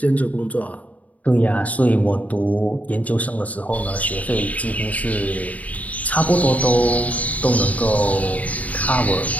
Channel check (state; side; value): late; right; 0.071 ms